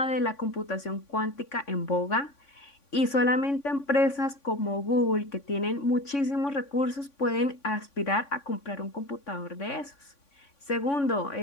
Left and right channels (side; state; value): right; late; 3.5 ms